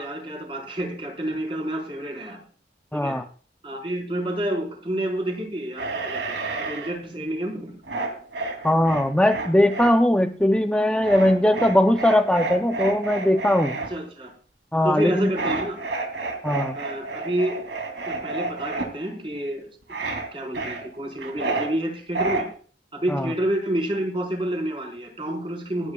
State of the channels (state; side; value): normal; both; correlation 0.75